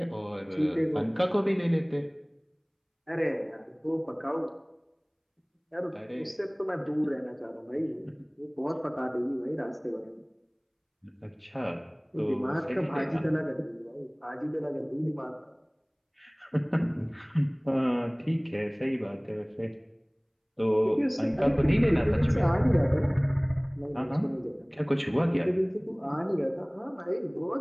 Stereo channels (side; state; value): both; identical; correlation 1.00